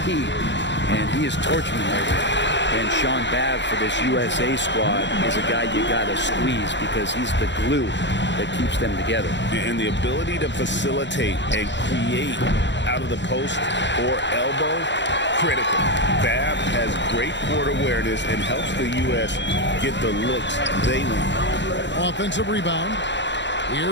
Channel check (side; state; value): right; late; 0.53 ms